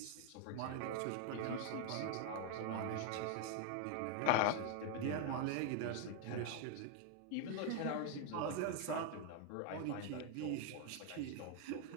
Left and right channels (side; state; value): both; different; correlation 0.01